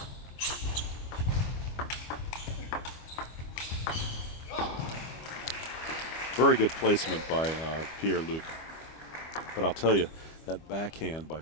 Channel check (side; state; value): right; late; 25 ms